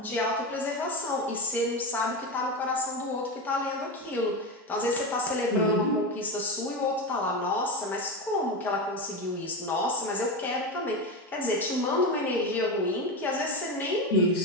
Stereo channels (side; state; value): both; normal; correlation 0.18